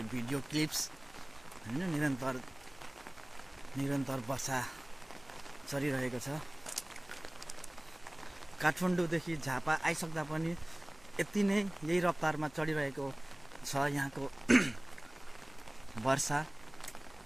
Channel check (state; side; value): noise; right; hum, 27 dB below the sound